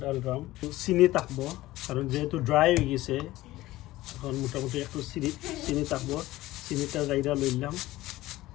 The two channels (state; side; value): quieter; right; 17.0 dB